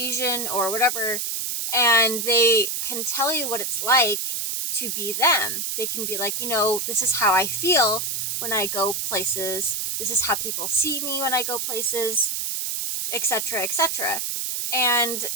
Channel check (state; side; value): noise; right; hiss, 2 dB below the sound